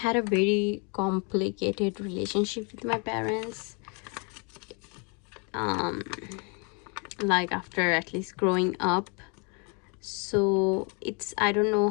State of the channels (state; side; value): quieter; right; 34.6 dB